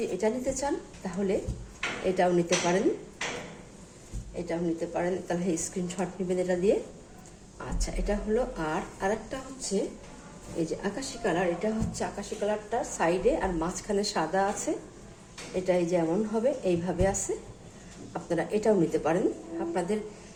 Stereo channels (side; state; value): both; identical; correlation 1.00